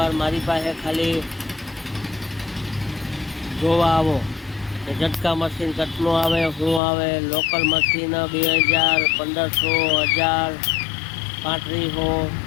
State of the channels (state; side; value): drops out; right; at 6.8 s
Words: મારી પાસે ખાલી જોવા આવો કે ઝટકા મશીન કેટલું આવે, શું આવે. લોકલ મશીન 2000, 1500, 1000, 3500